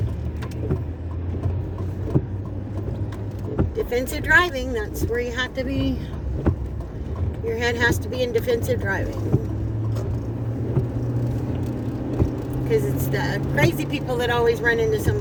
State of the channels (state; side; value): identical; both; correlation 1.00